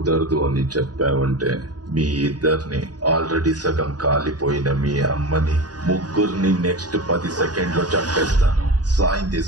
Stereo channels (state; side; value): late; left; 0.69 ms